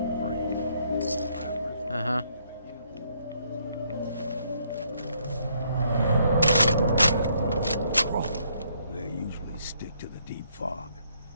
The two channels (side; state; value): both; inverted; correlation -0.70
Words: brain. Rappers Uh-huh. They usually stick to the deep fog.